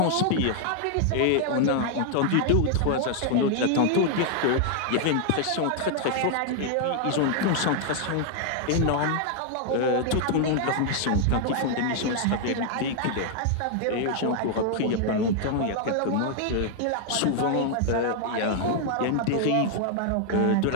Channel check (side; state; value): both; different; correlation 0.00